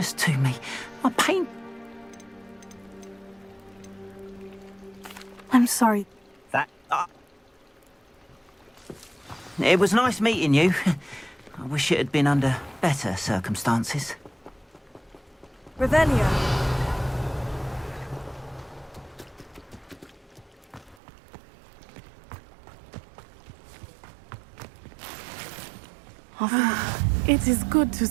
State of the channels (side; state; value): left; drops out; at 21.0 s